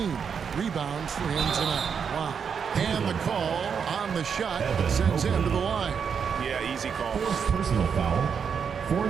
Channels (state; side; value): quieter; left; 6.7 dB